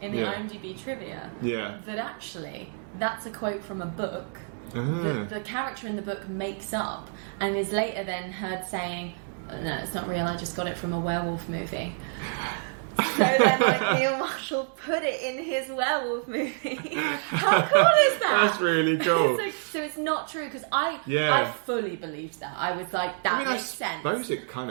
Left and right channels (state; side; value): silent; left; 59 dB below the other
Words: in the IMDb trivia that actually that's a quote from a book that the character in the book makes up and is later then heard saying, no, it's not real, I just got it from a werewolf movie. So then, like, Neil Marshall put it in his werewolf movie. How cool is that? That's really cool. So it's not true, because I fully believed that. I was like, that makes sense. I suppose it kind